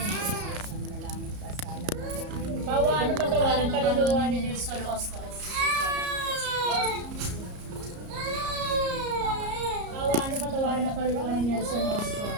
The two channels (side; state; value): left; late; 34 ms